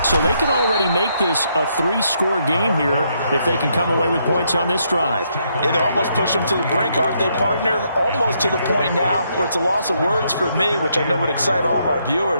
so they can already make this a 3-score game here if they can come away with points on this drive. Yeah, they're almost pushing them to the brink, aren't they, partner? Almost to the point now where it's a loss of words for me, which I know would excite all of our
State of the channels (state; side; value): inverted; both; correlation -0.75